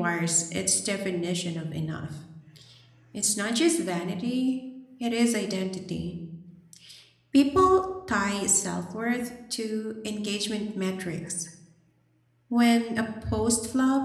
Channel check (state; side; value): identical; both; correlation 1.00